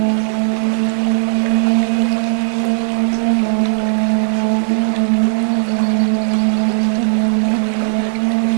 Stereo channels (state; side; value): silent; left; 65 dB below the other